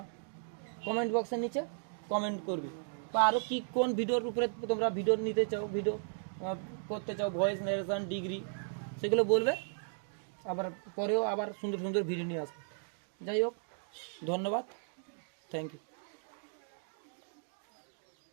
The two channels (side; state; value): left; silent; digital silence